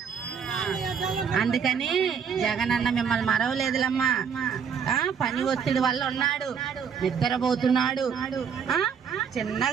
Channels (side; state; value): left; quieter; 6.9 dB